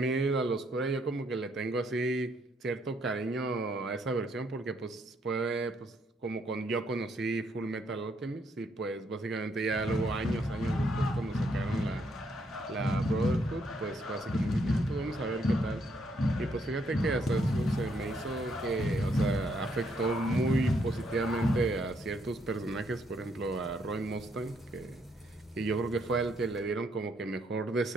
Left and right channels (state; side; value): normal; both; correlation 0.72